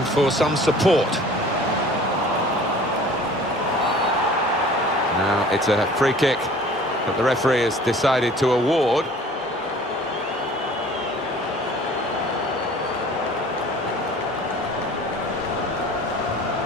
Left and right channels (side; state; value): both; normal; correlation 0.48